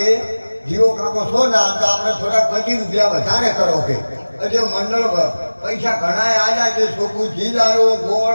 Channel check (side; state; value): both; inverted; correlation -1.00